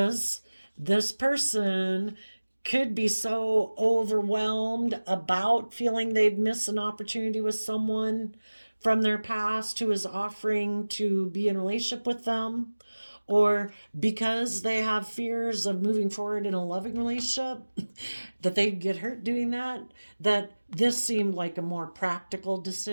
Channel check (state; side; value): inverted; both; correlation -1.00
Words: this person could be so overwhelmed about feeling they'd miss an opportunity with someone from their past who is offering to be in a relationship with them, or because they have fears of moving forward in a loving relationship, that they'd get hurt doing that, that this seemed like a more practical